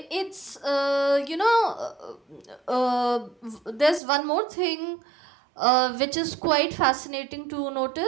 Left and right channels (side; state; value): left; drops out; at 4.0 s